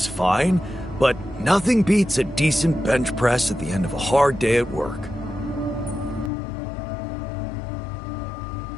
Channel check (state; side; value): drops out; right; at 6.3 s